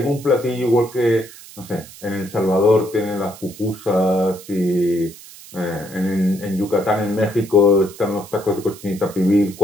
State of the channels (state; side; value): noise; right; hiss, 18 dB below the sound